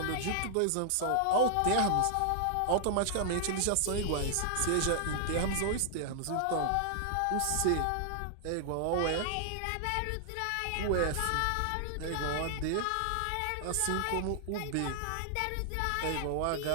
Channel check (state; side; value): different; both; correlation -0.01